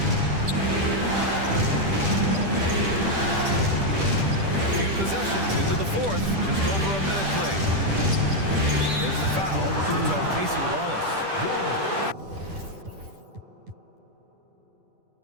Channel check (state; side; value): late; left; 10 ms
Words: Possessions into the 4th, just over a minute played. There's the foul. It's on Casey Wallace.